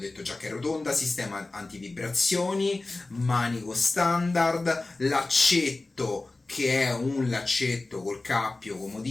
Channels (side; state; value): right; quieter; 3.2 dB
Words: detto già che è rotonda, sistema antivibrazioni, manico standard, laccetto che è un laccetto col cappio